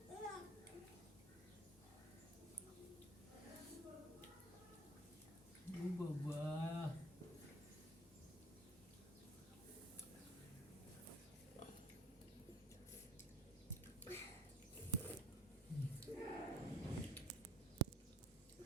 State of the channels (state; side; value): normal; both; correlation 0.49